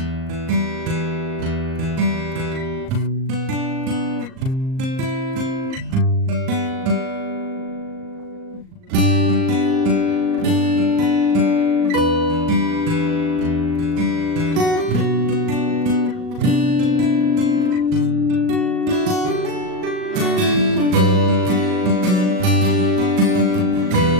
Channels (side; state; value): left; late; 38 ms